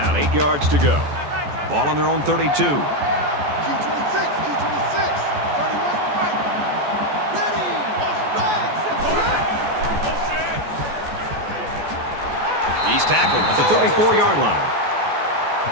8 yards to go. Ball on their own 32. Q26, Q26. 31's the mic. Ready. Motion right. He's tackled at the 34-yard line.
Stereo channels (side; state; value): left; late; 14 ms